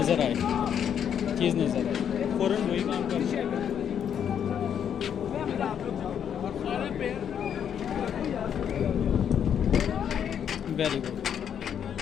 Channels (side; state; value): right; quieter; 8.6 dB